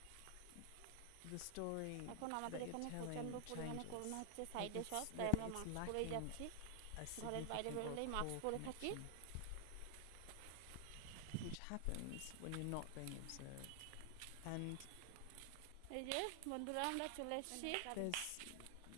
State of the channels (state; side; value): different; both; correlation 0.00